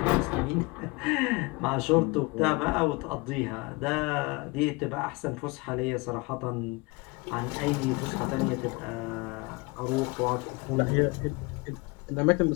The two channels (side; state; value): right; quieter; 26.4 dB